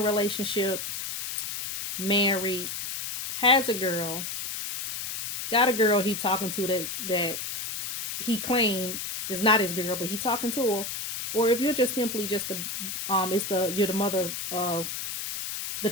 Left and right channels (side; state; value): left; noise; hiss, 5 dB below the sound